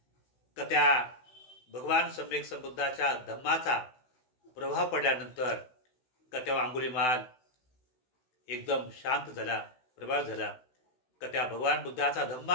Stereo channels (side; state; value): right; late; 16 ms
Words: का त्या भगवान सम्यक संबुद्धाच्या धम्माचा प्रभाव पडल्यानंतर का तेव्हा अंगुलीमाल एकदम शांत झाला, प्रभाव झाला. का त्या भगवान बुद्धाचा